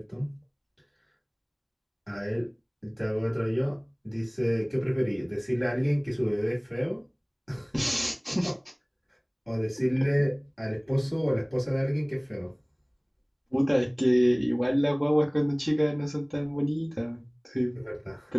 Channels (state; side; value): identical; both; correlation 1.00